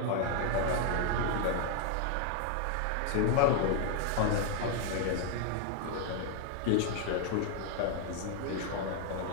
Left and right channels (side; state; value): both; different; correlation 0.00